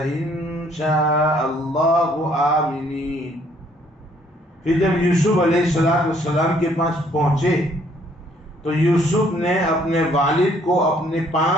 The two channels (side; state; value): both; normal; correlation 0.64